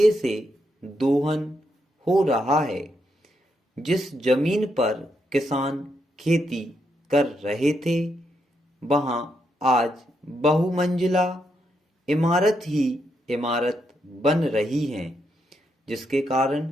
से दोहन हो रहा है। जिस जमीन पर किसान खेती कर रहे थे, वहां आज बहुमंजिला इमारत ही इमारत बन रही हैं, जिसके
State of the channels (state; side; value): normal; both; correlation 0.80